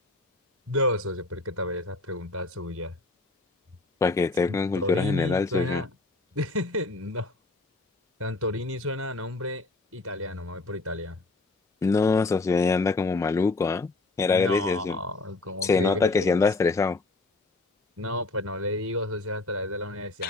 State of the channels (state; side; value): quieter; right; 3.3 dB